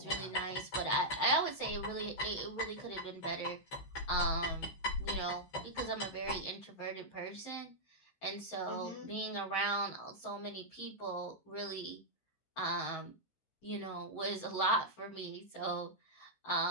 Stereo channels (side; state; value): right; late; 16 ms